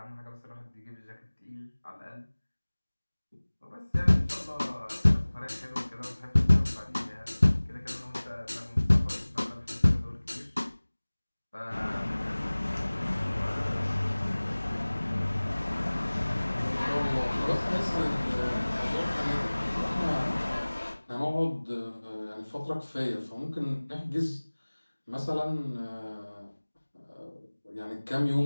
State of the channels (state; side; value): inverted; both; correlation -1.00